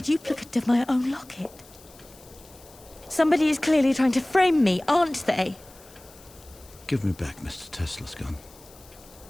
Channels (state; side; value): noise; left; hiss, 23 dB below the sound